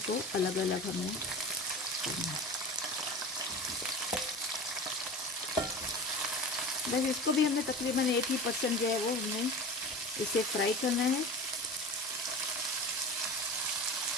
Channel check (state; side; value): normal; both; correlation 0.33